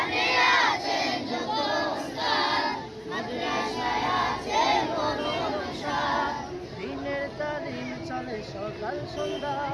আছেন যোগ্য উস্তাদ, মাদ্রাসায় আছে মনোরম সাজ। দিনের তালিম চলে সকাল সন্ধ্যা,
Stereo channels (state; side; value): identical; both; correlation 1.00